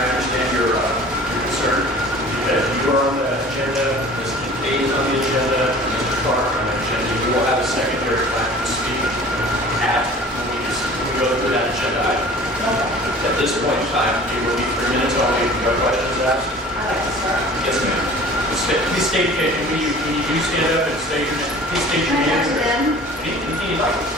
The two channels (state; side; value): normal; both; correlation 0.45